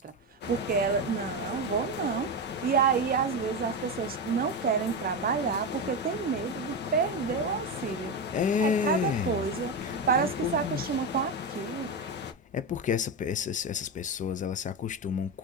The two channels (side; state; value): both; normal; correlation 0.14